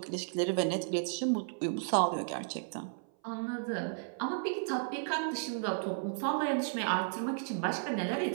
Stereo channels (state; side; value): silent; left; 55 dB below the other